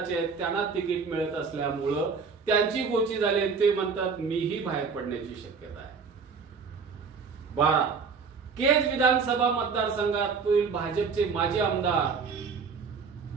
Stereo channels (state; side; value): quieter; left; 5.3 dB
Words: आहेत, त्यांना तिकीट मिळत असल्यामुळं त्यांची गोची झाली, ते म्हणतात मीही बाहेर पडण्याची शक्यता आहे. 12, केज विधानसभा मतदारसंघातील भाजपचे माजी आमदार